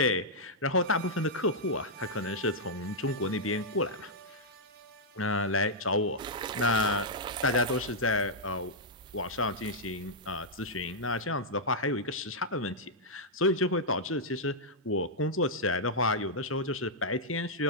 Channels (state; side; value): normal; both; correlation -0.07